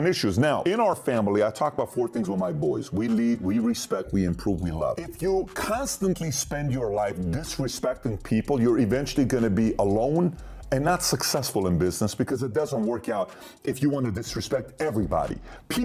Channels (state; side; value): identical; both; correlation 1.00